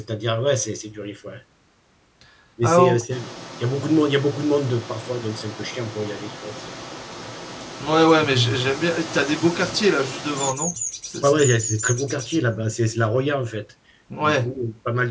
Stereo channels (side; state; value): both; identical; correlation 1.00